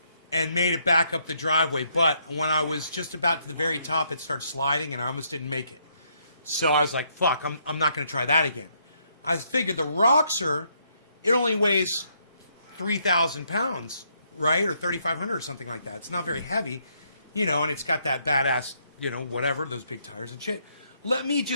and made it back up the driveway, but when I was just about to the very top, it started sliding, and I almost didn't make it. So I was like, fuck, I'm not going to try that again. I figured the Roxor, it only weighs 3,000 pounds, right? Or 3,500 or something like that. It's not very heavy, you know, and it's got that badass, you know, whatever, those big tires and shit. Let me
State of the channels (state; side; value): inverted; both; correlation -0.72